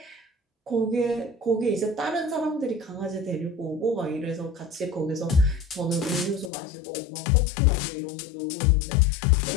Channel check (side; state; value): right; drops out; at 6.5 s